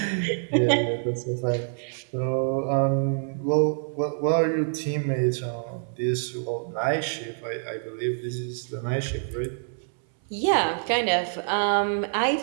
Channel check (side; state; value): left; silent; 61 dB below the other